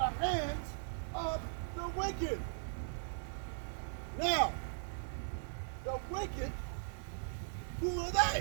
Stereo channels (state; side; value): silent; left; 52 dB below the other